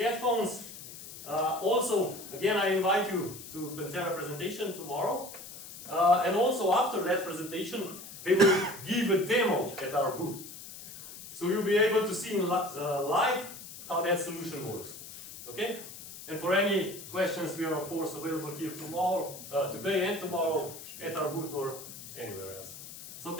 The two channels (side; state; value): left; noise; hiss, 14 dB below the sound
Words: Also, again, I invite you to Pantera presentation tomorrow. And also after that presentation, they will give a demo at our booth. So you'll be able to see in live how that solution works. Okay? And for any questions, we are of course available here tomorrow, today and tomorrow at our booth or anywhere else. So